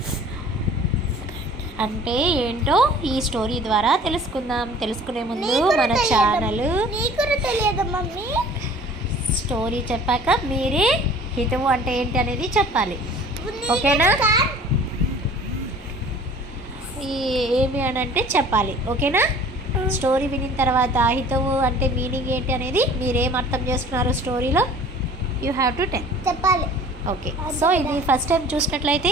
అంటే ఏంటో ఈ స్టోరీ ద్వారా తెలుసుకుందాం. తెలుసుకునే ముందు మన ఛానల్ స్టోరీ చెప్పాక మీరే హితవు అంటే ఏంటి అనేది చెప్పాలి. ఓకేనా? ఏమి అని అంటే చెప్పాలి. ఓకేనా? స్టోరీ వినిన తర్వాత హితవు అంటే మీనింగ్ ఏంటి అనేది మీరేం అర్థం చేస్తున్నారు స్టోరీలో యూ హ్యావ్ టు చెప్పాలి. ఓకే. సో ఇది ఫస్ట్ టైం చూసినట్లయితే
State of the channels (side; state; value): both; normal; correlation 0.48